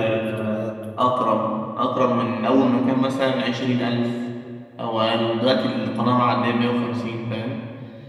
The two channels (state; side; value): identical; both; correlation 1.00